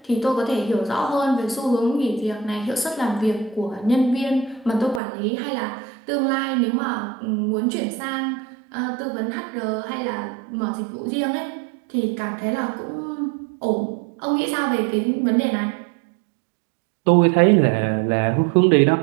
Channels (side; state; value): left; drops out; at 5.0 s